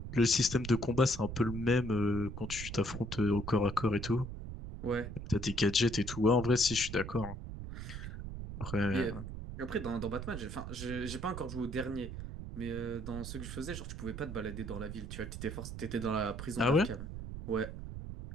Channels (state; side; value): noise; right; rumble, 8 dB below the sound